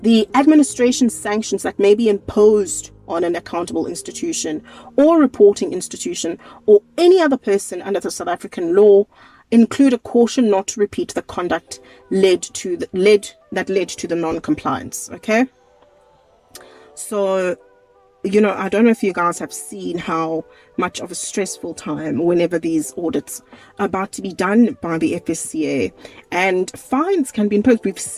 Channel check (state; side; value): identical; both; correlation 1.00